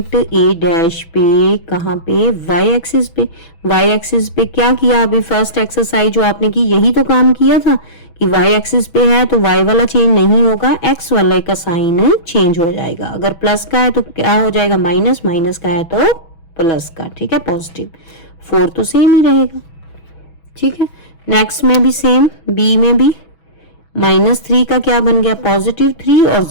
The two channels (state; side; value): late; right; 6.1 ms